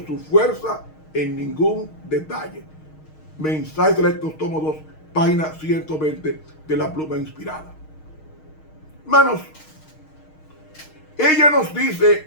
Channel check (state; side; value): late; right; 6.4 ms